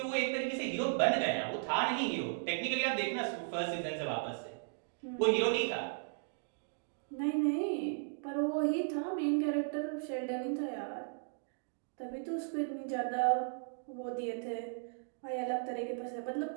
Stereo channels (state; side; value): silent; left; digital silence